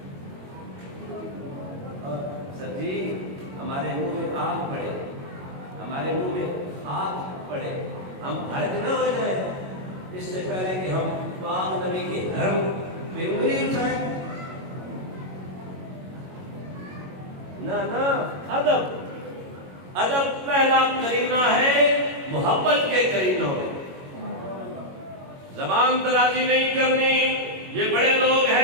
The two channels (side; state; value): left; late; 22 ms